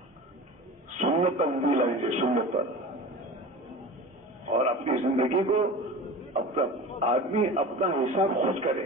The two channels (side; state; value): both; normal; correlation 0.34